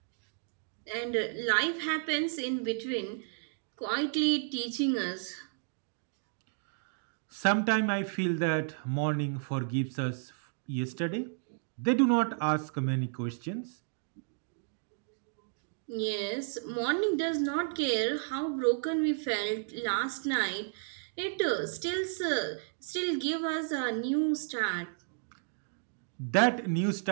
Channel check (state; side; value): silent; left; digital silence